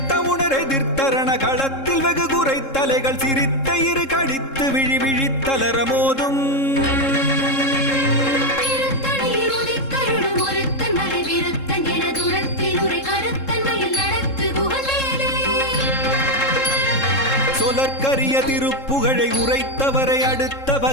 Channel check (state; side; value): late; right; 3.7 ms